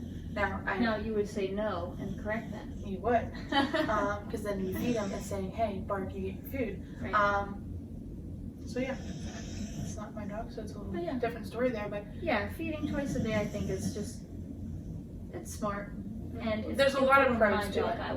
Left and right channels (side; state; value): both; identical; correlation 1.00